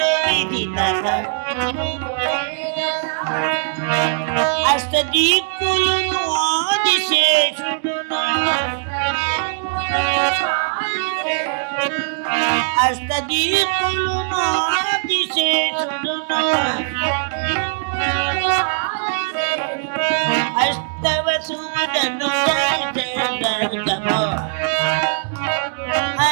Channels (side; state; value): left; silent; digital silence